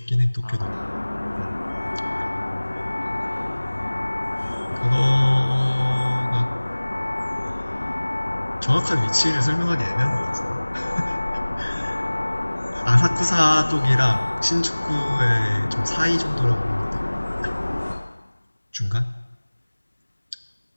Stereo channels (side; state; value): both; inverted; correlation -1.00